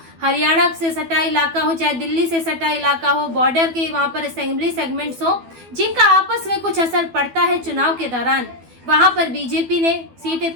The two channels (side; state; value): left; late; 12 ms